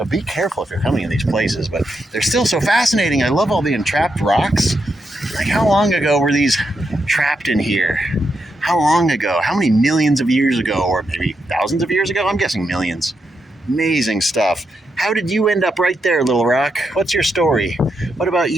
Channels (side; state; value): both; normal; correlation 0.83